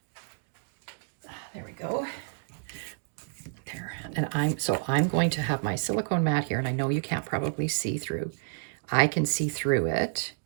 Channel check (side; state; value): left; silent; digital silence